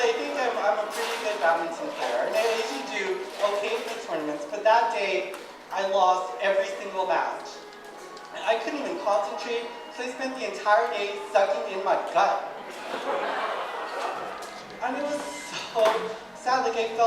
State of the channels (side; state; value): both; identical; correlation 1.00